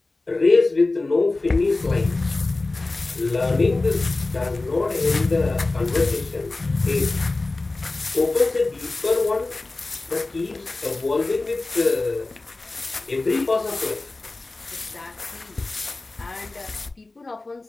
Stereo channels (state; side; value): quieter; right; 3.2 dB